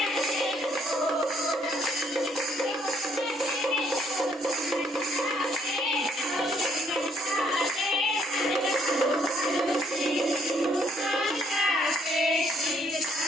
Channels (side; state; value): both; normal; correlation 0.68